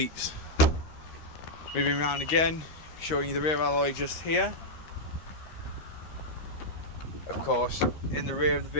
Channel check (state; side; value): late; right; 13 ms